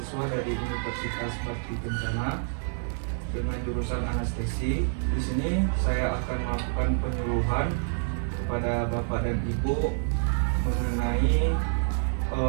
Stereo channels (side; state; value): left; silent; 59 dB below the other